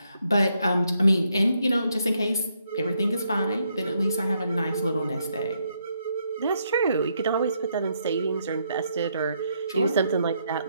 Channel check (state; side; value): inverted; both; correlation -0.76